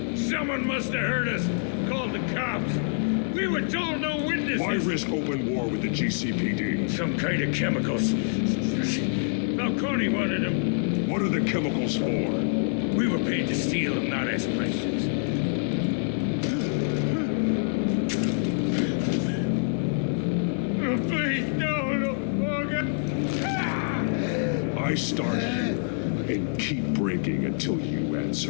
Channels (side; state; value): right; silent; digital silence